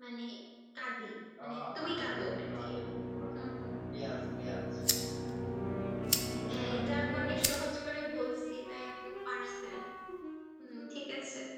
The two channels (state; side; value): identical; both; correlation 1.00